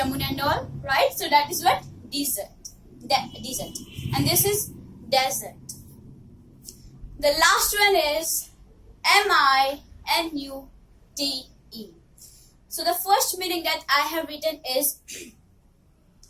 and all, right? So that is what dessert. Dessert. And this is desert. The last one is MINUTE. So the first meaning that I have written is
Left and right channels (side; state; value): both; identical; correlation 1.00